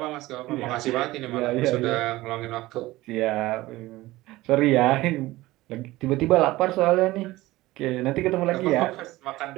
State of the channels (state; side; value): quieter; left; 18.3 dB